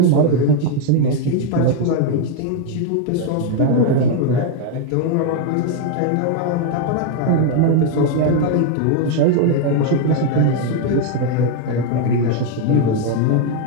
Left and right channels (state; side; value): different; both; correlation 0.01